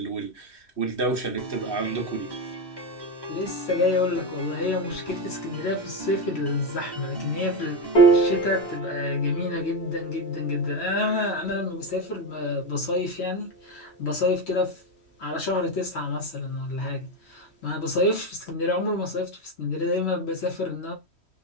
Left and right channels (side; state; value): right; late; 3.1 ms